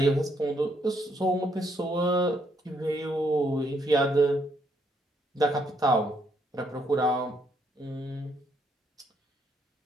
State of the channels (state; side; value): normal; both; correlation 0.72